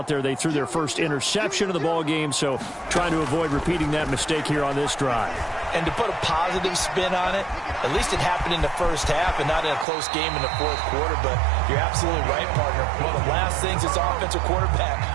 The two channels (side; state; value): left; drops out; at 9.9 s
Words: there, they threw their first interception of the ball game, so trying to avoid repeating that mistake here on this drive. And to put a positive spin on it, at least it happened in the first half and not in a close game in the 4th quarter, but you're absolutely right, partner. One of the last things this offensive